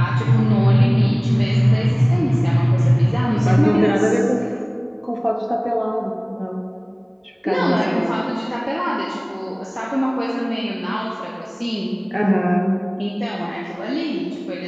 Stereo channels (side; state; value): both; identical; correlation 1.00